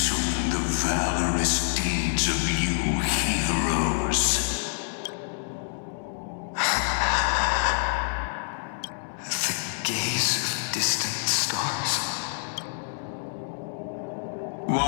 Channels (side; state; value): right; silent; 60 dB below the other